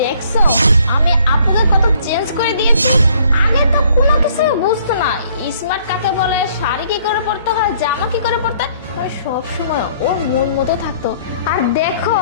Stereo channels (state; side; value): inverted; both; correlation -0.61